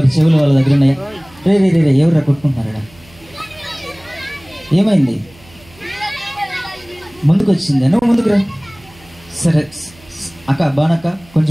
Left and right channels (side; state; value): right; noise; hum, 26 dB below the sound